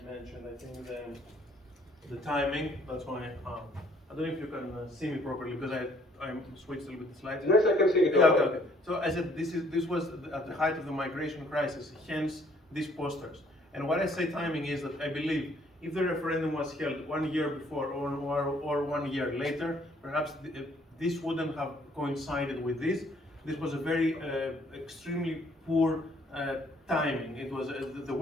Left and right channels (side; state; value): both; normal; correlation 0.62